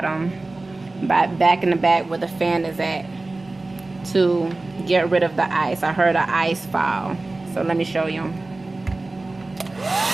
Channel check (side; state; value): left; quieter; 3.1 dB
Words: back in the back where the fan is at, to get rid of the ice. I heard an ice fall, so let me show you.